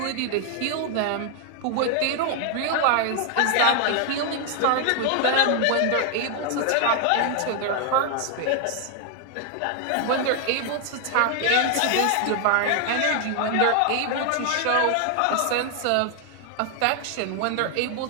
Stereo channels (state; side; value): different; both; correlation 0.00